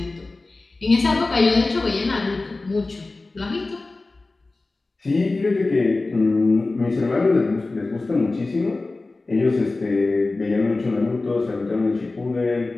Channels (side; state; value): right; quieter; 3.3 dB